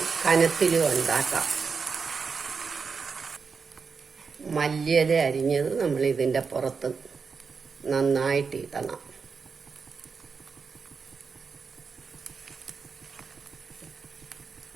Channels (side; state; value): left; quieter; 5.4 dB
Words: കനത്തിലും ഉണ്ടാക്കാം. മല്ലിയില അരിഞ്ഞത് നമ്മൾ ഇതിൻ്റെ പുറത്ത് നന്നായിട്ട് ഇടണം.